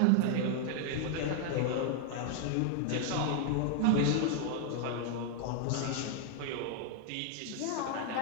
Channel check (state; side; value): different; both; correlation 0.00